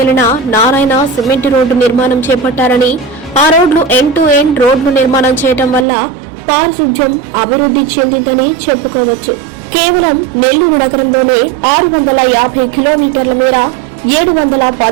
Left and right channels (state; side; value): drops out; left; at 5.9 s